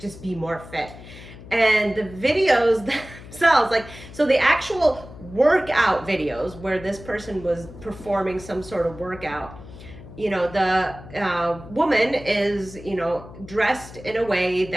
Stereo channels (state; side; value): noise; left; hum, 16 dB below the sound